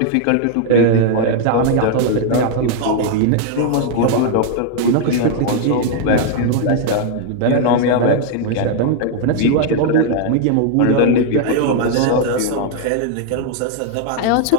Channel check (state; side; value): different; both; correlation 0.00